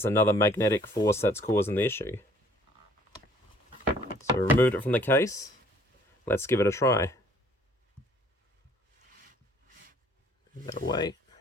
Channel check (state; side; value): normal; both; correlation 0.59